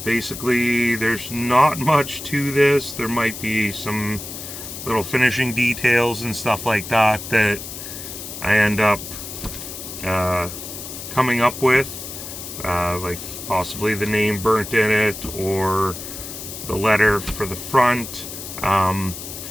basically there's not much to this. There might be some little finishing details and stuff like that that I end up coming up with, like possibly the name burnt in it or the letter for the front.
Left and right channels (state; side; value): noise; left; hiss, 10 dB below the sound